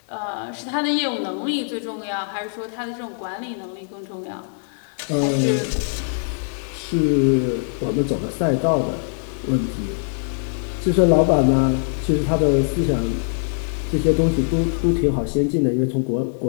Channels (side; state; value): right; silent; 64 dB below the other